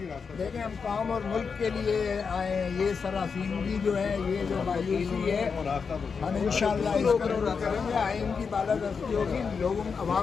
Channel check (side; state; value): right; quieter; 5.6 dB